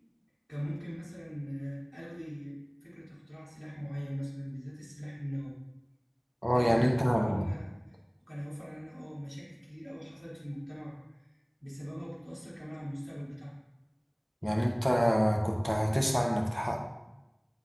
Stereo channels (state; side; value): identical; both; correlation 1.00